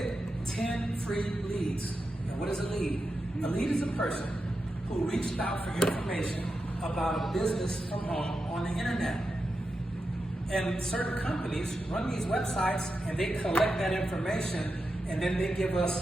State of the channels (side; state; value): both; normal; correlation 0.89